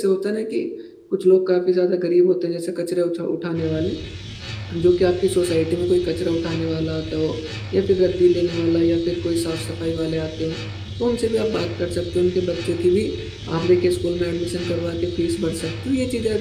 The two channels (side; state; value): both; identical; correlation 1.00